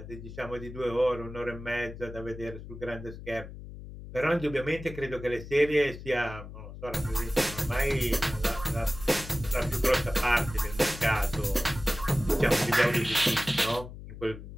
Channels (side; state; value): left; noise; hum, 13 dB below the sound